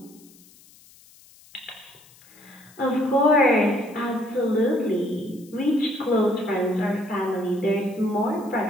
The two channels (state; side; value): noise; left; hiss, 26 dB below the sound